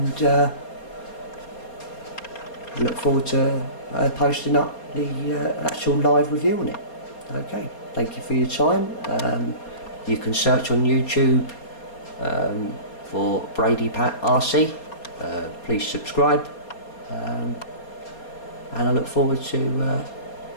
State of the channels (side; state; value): right; late; 4.3 ms